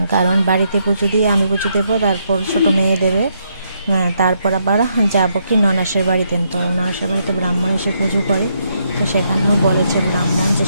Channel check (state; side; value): inverted; both; correlation -0.76